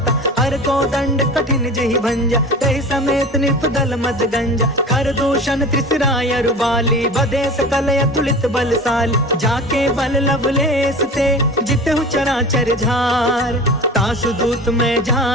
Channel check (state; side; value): normal; both; correlation 0.35